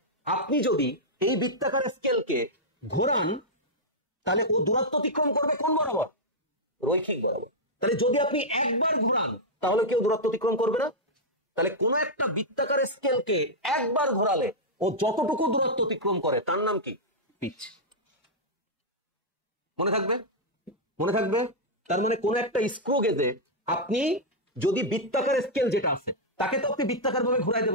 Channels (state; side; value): normal; both; correlation -0.06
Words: আপনি যদি এই বৃত্তাকার স্কেলকে ঘোরান, তাহলে ও দূরত্ব অতিক্রম করবে কোন বরাবর? রৈখিক বরাবর। তাহলে যদি আপনি একবার ঘোরান, তাহলে কেউ দূরত্ব অতিক্রম করবে না। তাহলে কোন একটা বৃত্তাকার স্কেলকে একবার ঘোরালে ও যতটুকু দূরত্ব অতিক্রম করে তার নাম কি? পিচ। মনে থাকবে? মনে থাকবে? তার মানে কোন একটা স্ক্রু গেজে আপনি যদি বৃত্তাকার স্কেল যেটা আছে তাকে তো আপনি বৃত্তাকার ভাবে ঘুরাইতে